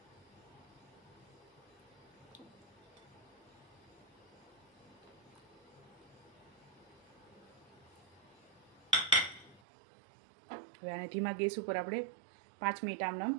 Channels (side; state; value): left; drops out; at 9.6 s